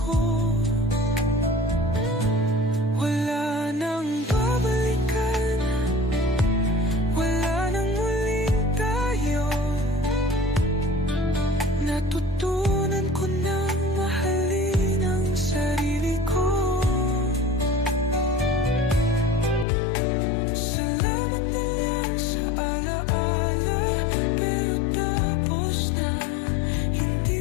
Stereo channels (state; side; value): drops out; right; at 19.7 s